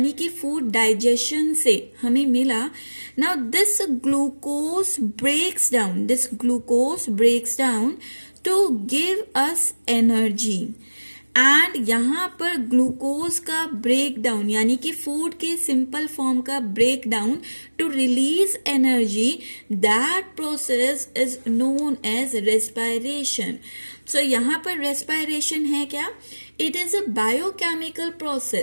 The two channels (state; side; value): inverted; both; correlation -1.00